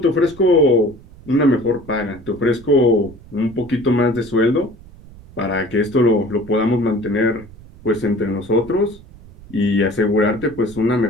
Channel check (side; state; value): right; noise; rumble, 21 dB below the sound